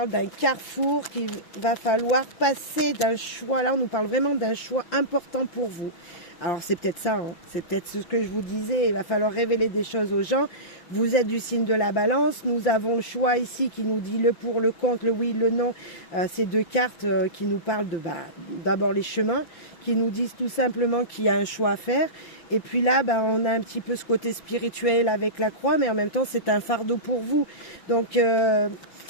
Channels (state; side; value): late; right; 5.8 ms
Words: d'un carrefour qu'il va falloir passer, d'un choix. Là, on nous parle vraiment d'un choix important pour vous. Alors, c'est peut-être ça, hein. C'est peut-être ce que je vous disais. Il va falloir révéler des choses aux gens. Vous êtes du signe de la balance. Nous avons le choix ici qui nous dit le pour, le contre, le oui, le non. Ces deux cartes qui nous parlent de d'abord les chemins, qui nous disent tout simplement qu'il y a un choix à faire. Et puis là, on a un petit peu ce côté spirituel avec la croix, mais en même temps, c'est un fardeau pour vous. Donc, je